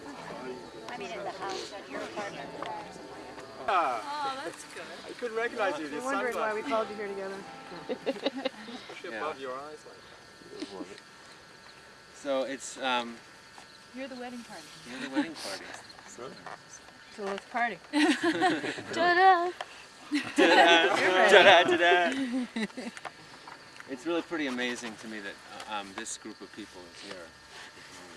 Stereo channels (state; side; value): identical; both; correlation 1.00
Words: I mean, in the house, at your apartment. Oh, that's good. I couldn't recognize you. I'm wondering why we called you here together. Especially above your eyes. So it's You're the wedding party. you're the wedding party. So let's party. Ta-da! Ta-da, ta-da. It's really pretty amazing to me that this group of people is here.